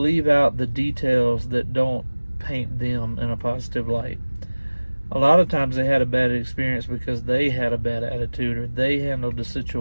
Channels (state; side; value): inverted; both; correlation -1.00